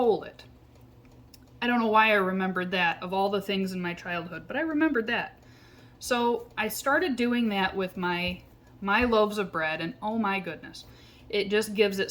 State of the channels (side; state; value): both; identical; correlation 1.00